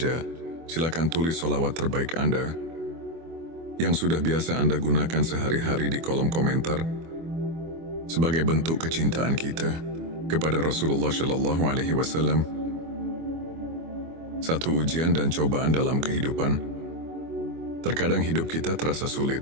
silakan tulis solawat terbaik Anda yang sudah biasa Anda gunakan sehari-hari di kolom komentar sebagai bentuk kecintaan kita kepada Rasulullah Shallallahu Alaihi Wasallam. Satu ujian dan cobaan dalam kehidupan. Terkadang hidup kita terasa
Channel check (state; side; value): late; left; 24 ms